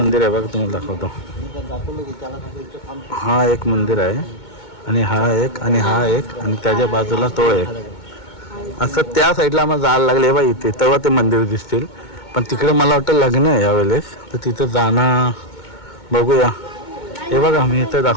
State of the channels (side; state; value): right; late; 2.2 ms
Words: आहे बघा, तुम्हाला दाखवतो. हा एक मंदिर आहे आणि हा एक आणि हा एक आणि त्याच्या बाजूला तो एक. असं त्या साईडला आम्हाला जायला लागले बा इथे, तेव्हा ते मंदिर दिसतील. पण तिकडे मला वाटतं लग्न आहे यावेळेस, तर तिथं जाणं बघूया. हे बघा मी इथं